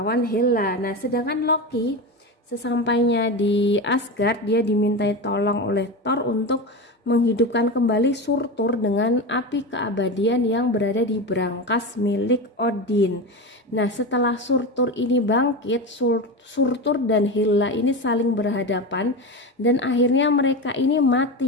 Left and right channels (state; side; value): normal; both; correlation 0.21